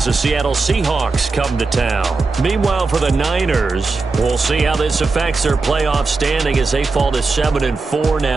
the Seattle Seahawks come to town. Meanwhile, for the Niners, we'll see how this affects their playoff standing as they fall to 7-4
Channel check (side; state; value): left; quieter; 3.9 dB